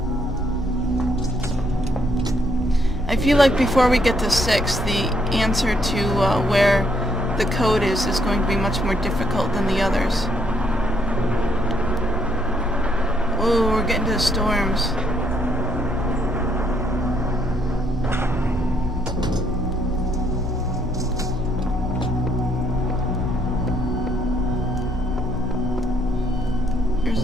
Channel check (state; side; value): normal; both; correlation 0.71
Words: I feel like before we get to 6, the answer to where the code is going to be much more difficult than the others. Oh, we're getting to the storms. There